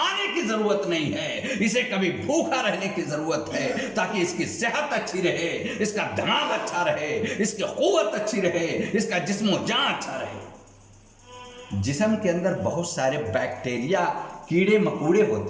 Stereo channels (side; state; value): both; identical; correlation 1.00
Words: کی ضرورت نہیں ہے، اسے کبھی بھوکا رہنے کی ضرورت ہے تاکہ اس کی صحت اچھی رہے، اس کا دماغ اچھا رہے، اس کی قوت اچھی رہے، اس کا جسم و جان اچھا رہے۔ جسم کے اندر بہت سارے بیکٹیریا، کیڑے مکوڑے